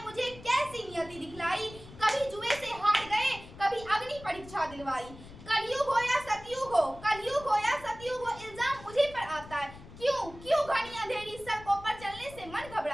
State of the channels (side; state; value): left; noise; rumble, 17 dB below the sound